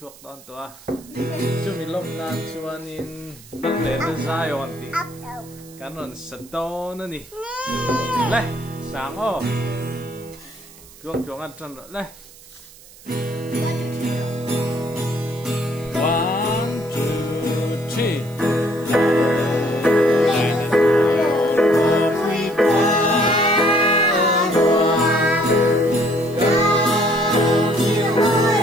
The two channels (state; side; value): noise; right; hiss, 22 dB below the sound